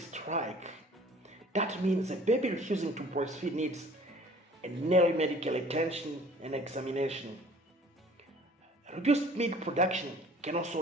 That means a baby refusing to breastfeed needs an early medical attention and examination. Reduced milk production can also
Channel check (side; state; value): both; normal; correlation 0.51